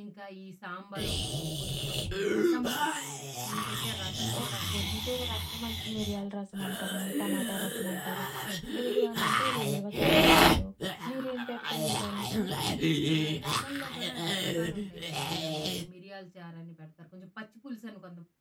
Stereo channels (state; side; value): identical; both; correlation 1.00